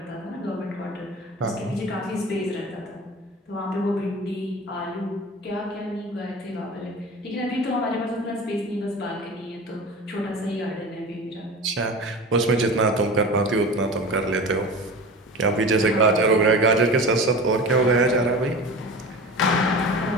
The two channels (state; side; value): normal; both; correlation 0.34